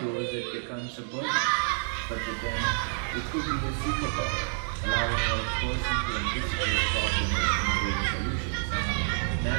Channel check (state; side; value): silent; left; digital silence